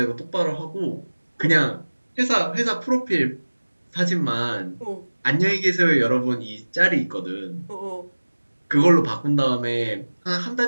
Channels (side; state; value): both; inverted; correlation -1.00